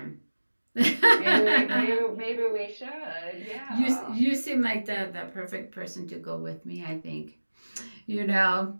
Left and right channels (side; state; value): both; inverted; correlation -1.00